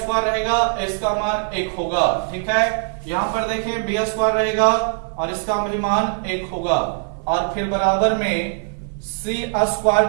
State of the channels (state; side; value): silent; left; 59 dB below the other